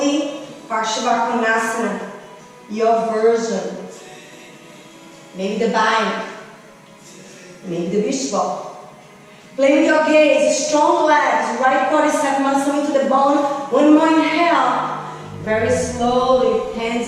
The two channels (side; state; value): both; identical; correlation 1.00